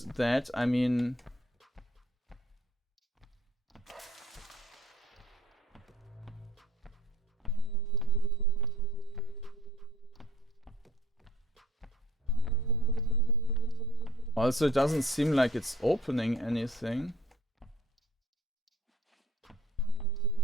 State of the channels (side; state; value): both; normal; correlation 0.55